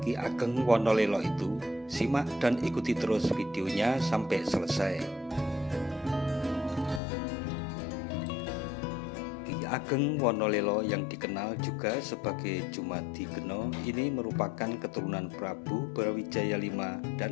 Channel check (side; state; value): right; drops out; at 7.0 s